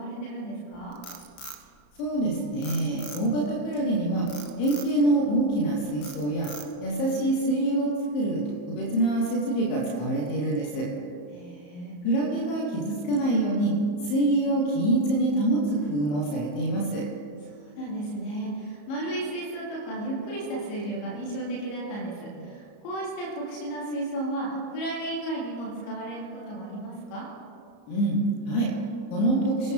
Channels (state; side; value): late; right; 34 ms